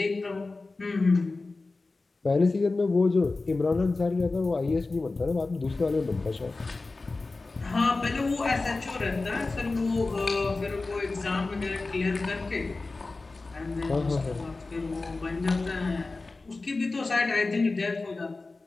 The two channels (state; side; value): quieter; right; 3.5 dB